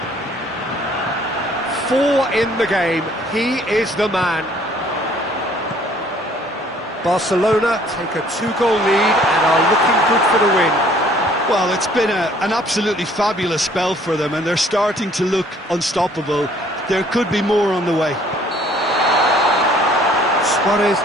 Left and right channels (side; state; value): both; normal; correlation 0.58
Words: 4 in the game. He is the man. Barcelona take a 2-goal lead and are looking good for the win. Well, it's been an absolutely fabulous spell for them, and they're starting to look unstoppable. There could be more on the way. Suarez